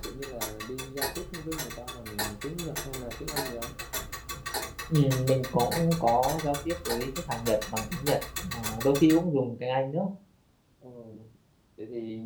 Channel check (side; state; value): both; identical; correlation 1.00